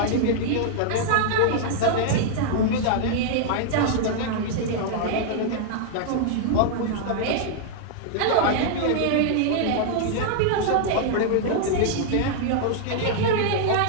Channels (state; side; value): different; both; correlation -0.01